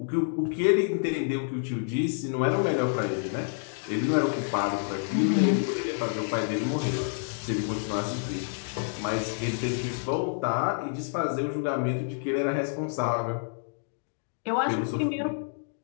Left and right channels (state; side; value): silent; right; digital silence